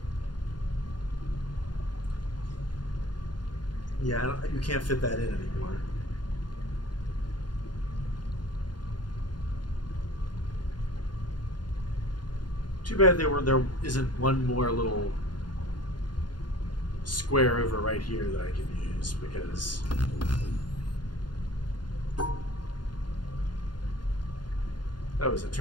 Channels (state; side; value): late; right; 0.71 ms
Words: Yeah, you can't fit that in anymore. Too bad there isn't one more little square over right here that I can use, because oh, as it